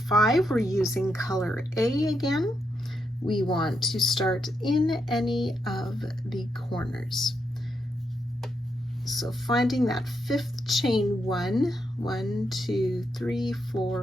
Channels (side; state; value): both; normal; correlation 0.81